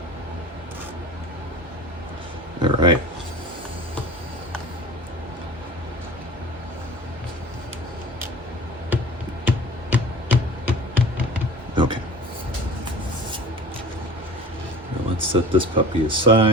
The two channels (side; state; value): both; normal; correlation 0.40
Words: All right. Okay. Now let's set this puppy